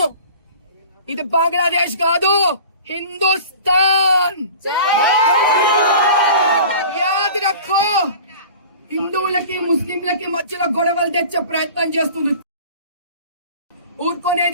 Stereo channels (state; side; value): inverted; both; correlation -0.41